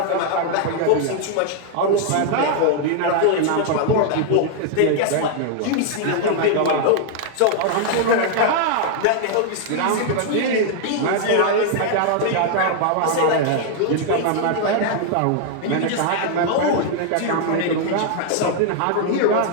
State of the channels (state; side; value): different; both; correlation 0.00